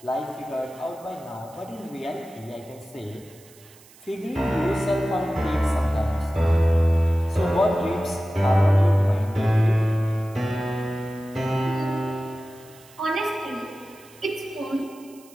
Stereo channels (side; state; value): right; noise; hiss, 25 dB below the sound